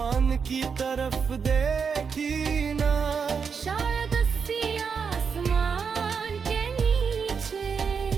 की तरफ देखी ना। शायद उसी आसमान के नीचे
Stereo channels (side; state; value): left; quieter; 6.0 dB